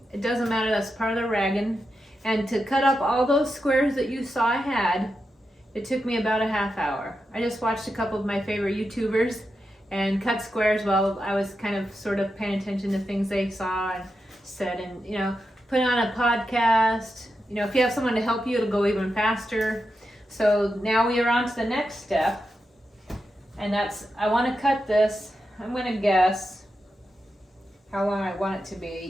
It doesn't matter. That's part of the ragging. And to cut up all those squares that you saw I had, it took me about a 1/2 hour. I just watched a couple of my favorite YouTubers and cut squares while I was kind of sort of paying attention to things they saw and said, and put on a podcast. If you have someone to help you, it'll go even faster. So now we are on to the next step. And I want to cut this, I'm going to guess how long I want it to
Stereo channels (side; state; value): both; normal; correlation 0.88